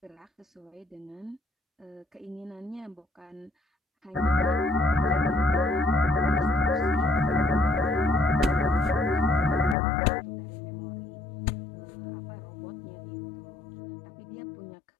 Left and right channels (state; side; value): drops out; right; at 9.8 s